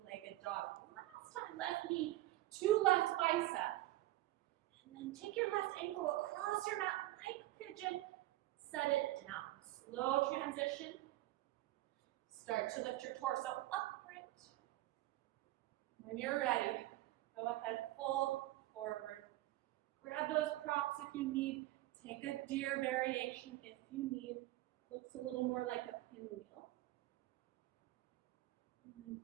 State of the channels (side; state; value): left; quieter; 16.6 dB